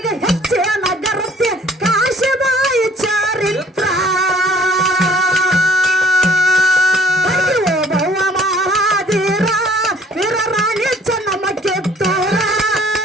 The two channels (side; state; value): both; normal; correlation 0.56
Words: ಹೆಚ್ಚೆ ನಗರತ್ತೆ ಕಾಶಿಬಾಯಿ ಚಾರಿತ್ರ ಭವ ಮಹಾದೀರ ವೀರರಾಣಿ ಚೆನ್ನಮ್ಮ ಕಿತ್ತೂರ